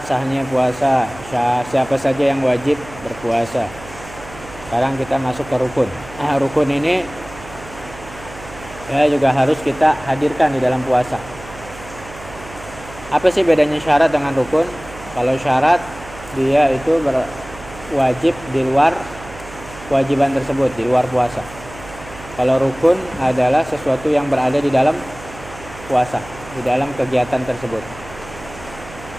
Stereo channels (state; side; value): noise; right; hum, 17 dB below the sound